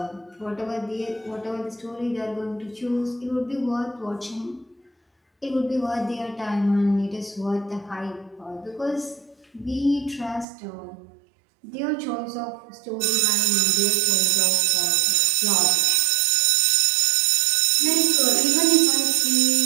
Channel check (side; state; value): left; drops out; at 10.5 s